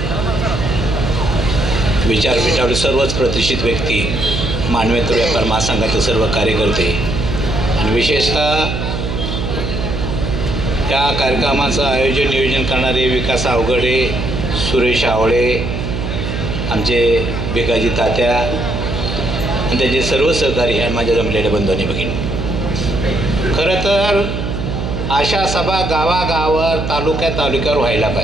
विचारपीठावर सर्वच प्रतिष्ठित व्यक्ती, मानवेतर व्यापार महासंघाचे सर्व कार्यकर्ते आणि विशेषतः या कार्यक्रमाचं आयोजन नियोजन करणारे विकास अवघडे, सुरेश आवळे, आमचे भिकाजी तात्या आणि त्यांचे सर्व सहकारी आणि माझ्या जमलेल्या बंधू आणि भगिनी. खरं तर अशा सभा गावागावावर तालुक्यावर व्हायला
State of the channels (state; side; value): noise; right; hum, 4 dB below the sound